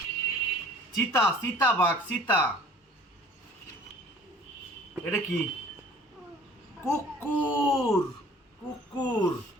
চিতা, চিতা বাঘ, চিতা। এটা কি? কুকুর, কুকুর।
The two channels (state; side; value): normal; both; correlation 0.50